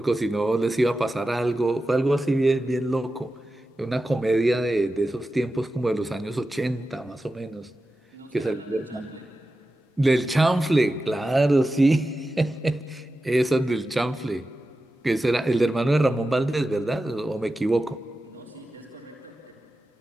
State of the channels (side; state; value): both; normal; correlation 0.92